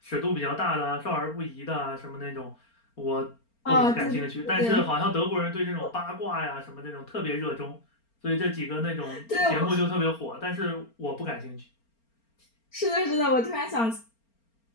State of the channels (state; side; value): late; right; 4.4 ms